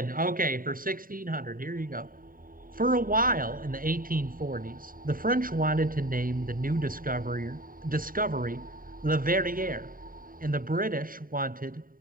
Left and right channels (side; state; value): left; late; 0.41 ms